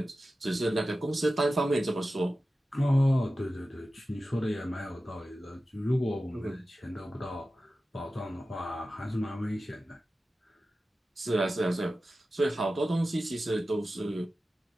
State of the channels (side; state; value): both; normal; correlation 0.94